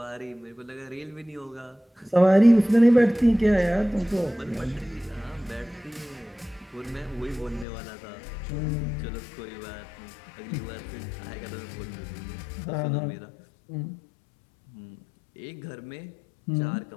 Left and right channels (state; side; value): drops out; right; at 7.7 s